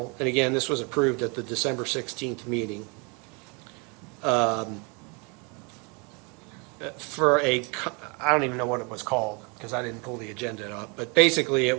and again, this was approved at the December 16th meeting. I don't even know what it was called, because I didn't pull the agenda up, but basically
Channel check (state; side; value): quieter; left; 32.2 dB